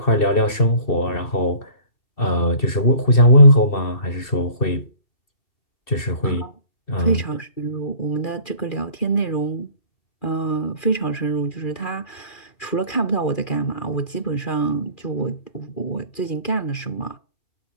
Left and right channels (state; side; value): late; right; 2.4 ms